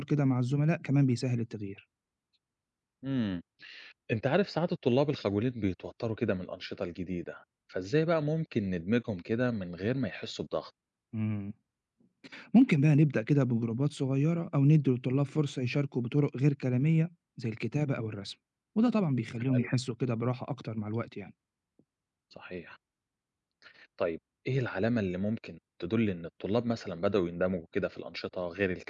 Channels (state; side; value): identical; both; correlation 1.00